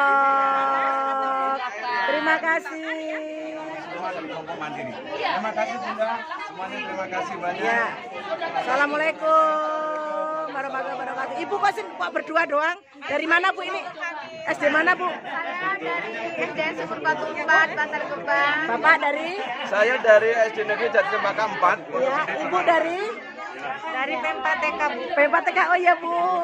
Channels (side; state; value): both; identical; correlation 1.00